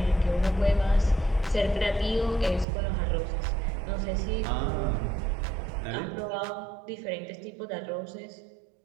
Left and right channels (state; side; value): drops out; left; at 2.7 s